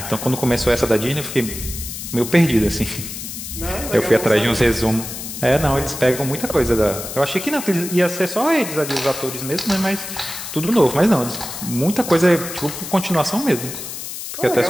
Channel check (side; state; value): left; noise; hiss, 8 dB below the sound